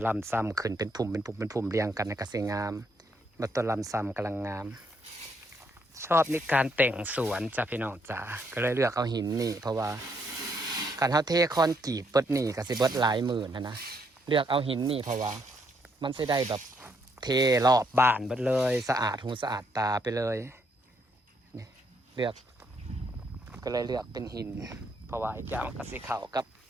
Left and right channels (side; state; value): both; normal; correlation 0.74